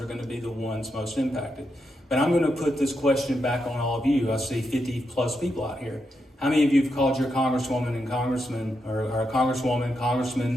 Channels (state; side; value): normal; both; correlation 0.83